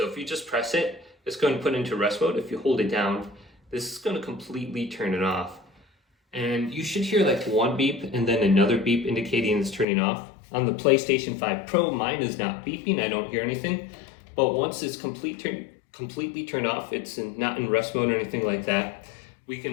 if you just press it, it's going to put into rest mode. If you hold it down, this is going to completely turn it off. And you should hear like one beep and then another beep indicating it's turning off. On the PlayStation 5 Pro, mine is not beeping, I don't hear anything. But once it's completely turned off, it's not in rest mode or anything like that, we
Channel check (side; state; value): right; drops out; at 9.9 s